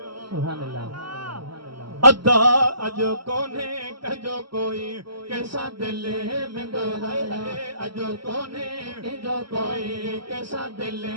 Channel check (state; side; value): late; left; 0.74 ms